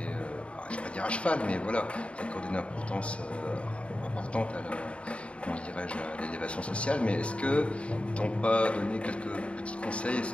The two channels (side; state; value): right; late; 0.061 ms